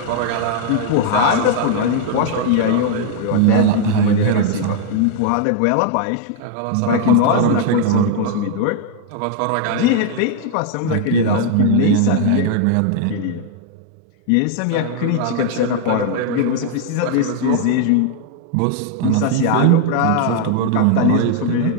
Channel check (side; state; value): both; different; correlation 0.00